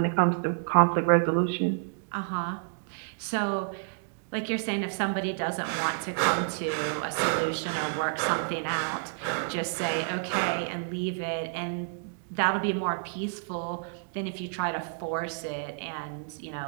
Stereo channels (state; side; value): silent; left; digital silence